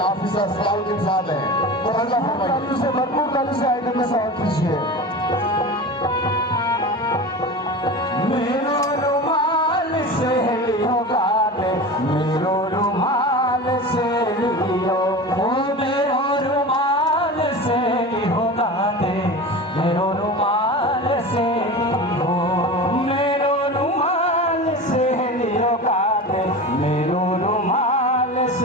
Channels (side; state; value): both; normal; correlation 0.30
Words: ऑफिसर सलाउद्दीन साहब हैं तो अल्लाह फरमाइए से भरपूर ताली से आइटम में सवाल कीजिए। मेरो रुमाल से लियो गाने, मेरो रुमाल से लियो, ओ मेरो रुमाल से लियो गाने, मेरो रुमाल से लियो, मेरो रुमाल से लियो गाने, मेरो रुमाल